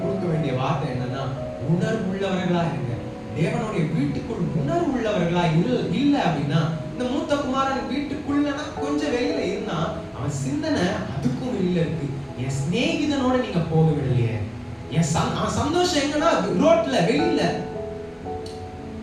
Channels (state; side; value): identical; both; correlation 1.00